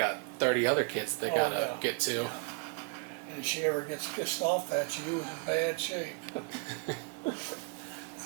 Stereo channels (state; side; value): quieter; left; 36.2 dB